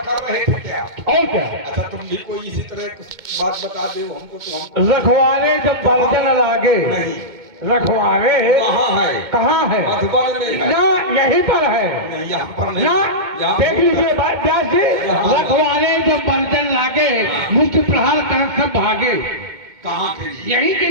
कर रहे थे क्या? और क्या? अच्छा तुम भी कोई इसी तरह कुछ बात बता दो हमको तो हम रखवाले जब बर्तन लागे नहीं रखवाले कहाँ है? कहाँ है? मधुबन में है। ना यहीं पर है नहीं यहाँ पर नहीं। ना। यहाँ देख लीजिए व्यास जी, रखवाले जब बर्तन लागे मुख्य प्रहार कर सब भागे। कहाँ के लिए? यही के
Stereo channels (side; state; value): left; late; 2.1 ms